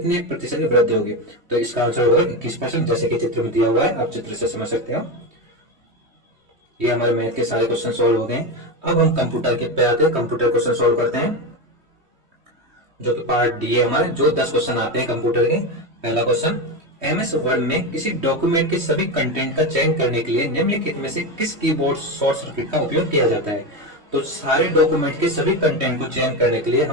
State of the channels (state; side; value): late; left; 3.2 ms